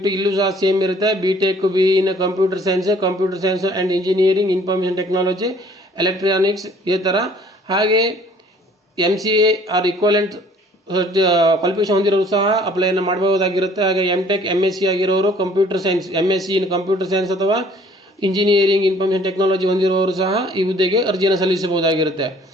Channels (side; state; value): both; normal; correlation 0.56